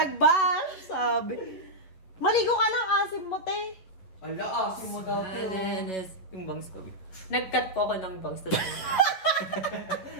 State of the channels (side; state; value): right; late; 11 ms